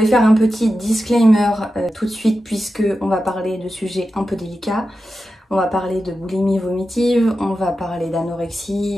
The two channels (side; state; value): both; normal; correlation 0.91